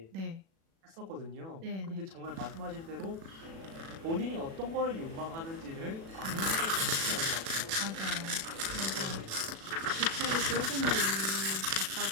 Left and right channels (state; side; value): late; left; 36 ms